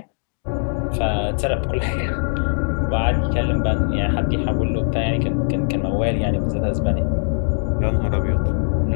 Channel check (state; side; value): silent; right; digital silence